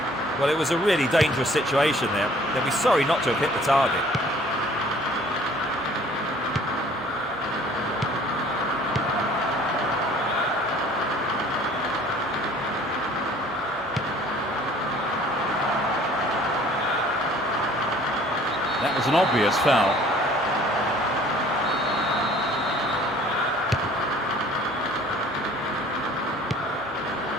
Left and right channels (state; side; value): normal; both; correlation 0.53